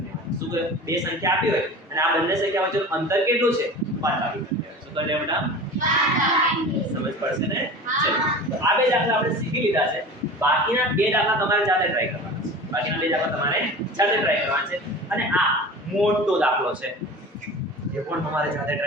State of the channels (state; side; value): normal; both; correlation 0.36